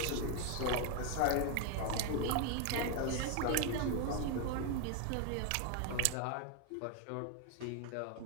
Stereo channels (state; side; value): different; both; correlation 0.01